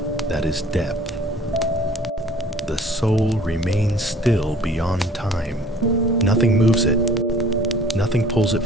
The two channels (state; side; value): normal; both; correlation 0.51